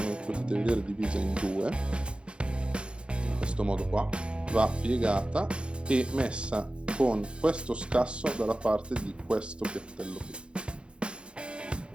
potete vedere è divisa in due, in questo modo qua, va piegata e messa con questo scasso dalla parte di questo piattello qui, il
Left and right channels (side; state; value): left; late; 0.056 ms